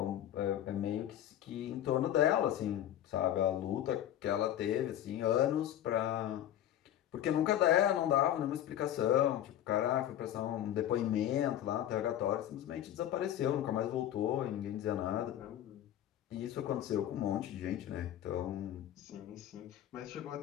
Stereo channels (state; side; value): quieter; right; 11.6 dB